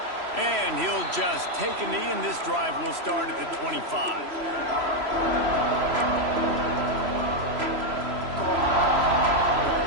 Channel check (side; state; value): left; late; 3.0 ms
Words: And he'll just take a knee, and this drive will start at the 25.